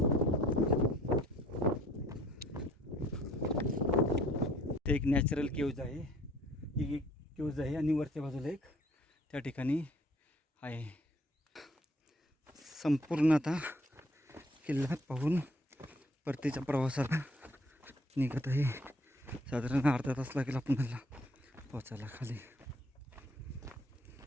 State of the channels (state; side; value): normal; both; correlation 0.59